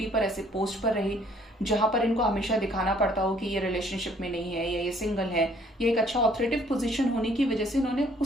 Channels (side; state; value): both; normal; correlation 0.61